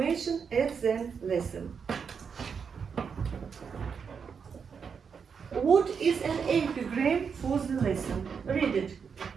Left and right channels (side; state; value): left; quieter; 6.3 dB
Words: at the lesson. What is an epigram for the lesson? Read it.